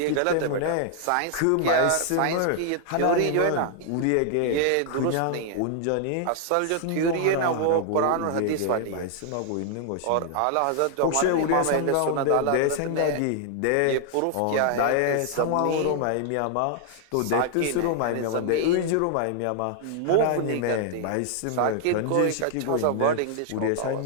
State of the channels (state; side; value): different; both; correlation 0.00